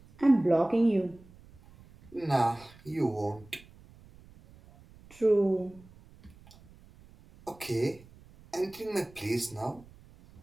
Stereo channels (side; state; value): right; noise; rumble, 24 dB below the sound